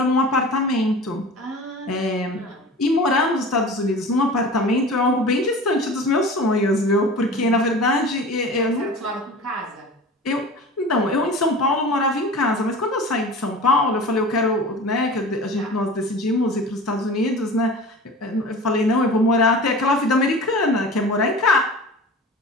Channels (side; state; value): both; normal; correlation 0.37